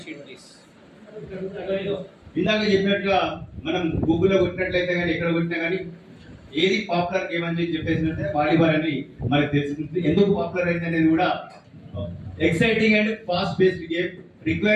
sheet please. ఇందాక చెప్పినట్టుగా మనం గూగుల్లో కొట్టినట్లయితే కానీ ఎక్కడ కొట్టినా కానీ ఏది పాపులర్ గేమ్ అని చెప్పేసినట్టే వాలీబాల్ అని మనకు తెలుస్తుంది. ఎందుకు పాపులర్ అయింది అనేది కూడా exciting and fast based game,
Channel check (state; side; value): identical; both; correlation 1.00